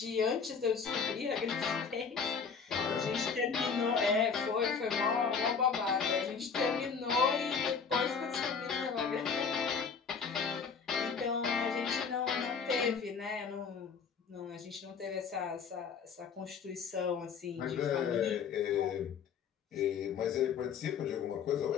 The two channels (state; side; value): quieter; right; 6.0 dB